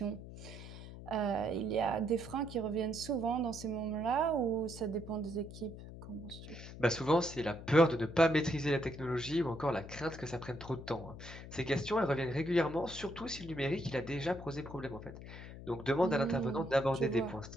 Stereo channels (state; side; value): noise; left; hum, 13 dB below the sound